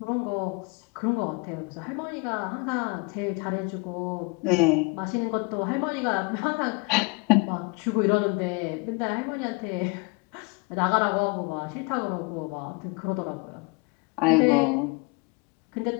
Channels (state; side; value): quieter; right; 29.4 dB